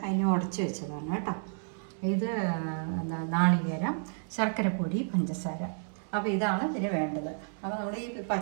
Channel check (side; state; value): left; silent; digital silence